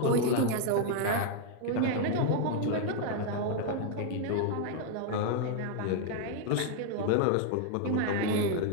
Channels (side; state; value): both; different; correlation 0.00